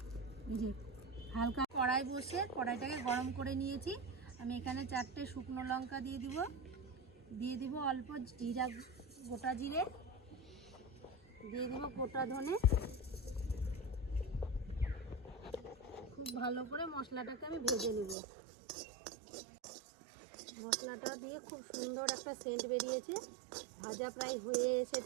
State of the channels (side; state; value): left; drops out; at 18.2 s